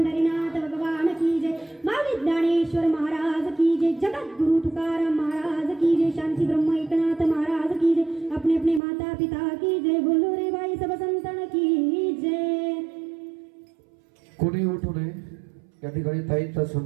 भगवान की जय. माऊली ज्ञानेश्वर महाराज की जय. जगद्गुरु तुकाराम महाराज की जय. शांती ब्रह्म एकनाथ महाराज की जय. अपने अपने माता पिता की जय. बोलो रे बाई सब संतन की जय. कोणी उठू नये. या ठिकाणी ताईंचा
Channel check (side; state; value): left; drops out; at 8.8 s